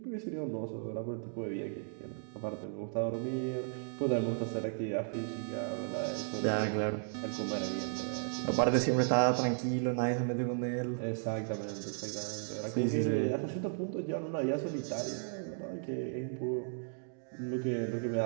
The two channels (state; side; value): silent; left; digital silence